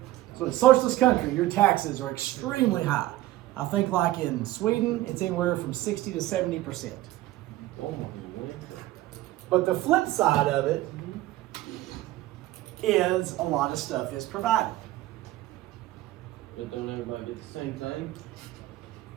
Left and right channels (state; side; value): quieter; left; 16.1 dB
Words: So in a socialist country, your taxes are extremely high. I think like in Sweden, it's anywhere from 60 to 70%. But the flip side of it is a lot of stuff is provided. But don't everybody get the same thing?